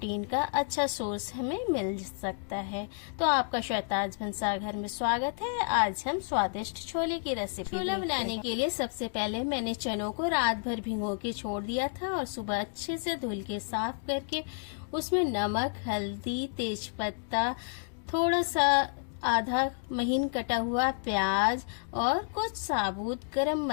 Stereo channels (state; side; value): silent; right; digital silence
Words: का अच्छा सोर्स हमें मिल सकता है। तो आपका शहताज भंसार घर में स्वागत है। आज हम स्वादिष्ट छोले की रेसिपी छोला बनाने के लिए सबसे पहले मैंने चनों को रात भर भिगो के छोड़ दिया था और सुबह अच्छे से धुल के साफ करके उसमें नमक, हल्दी, तेज पत्ता, थोड़ा सा आधा महीन कटा हुआ प्याज और कुछ साबुत गरम